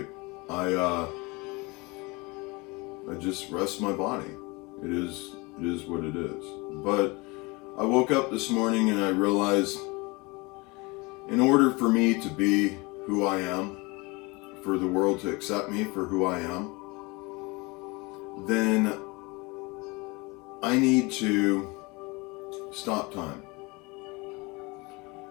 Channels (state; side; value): quieter; right; 25.9 dB